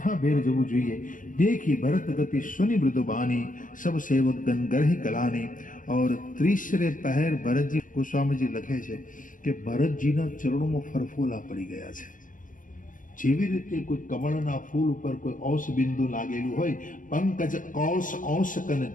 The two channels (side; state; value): right; late; 0.38 ms